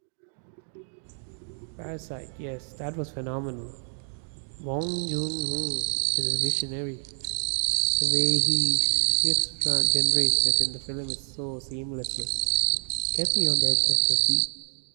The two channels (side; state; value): left; silent; 60 dB below the other